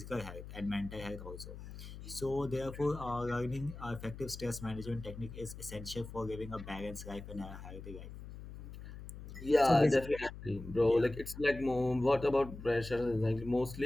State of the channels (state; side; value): noise; left; hum, 12 dB below the sound